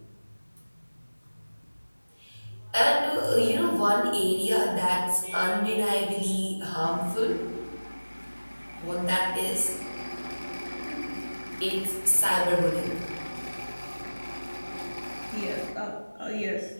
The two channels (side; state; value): both; inverted; correlation -1.00